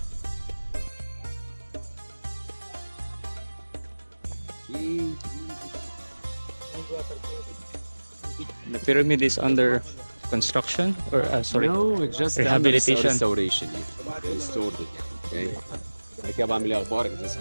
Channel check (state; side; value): inverted; both; correlation -1.00